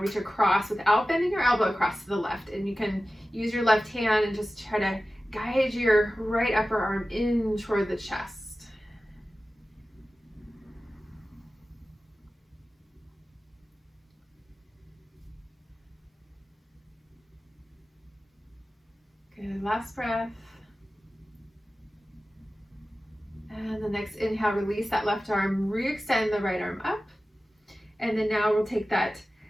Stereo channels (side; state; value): both; normal; correlation 0.95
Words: reach across without bending your elbow across to the left. And you can use your left hand and just try to guide your right upper arm in toward the chest. Good, last breath. And the next inhale, release that left arm, re-extend the right arm up. And then now we'll take that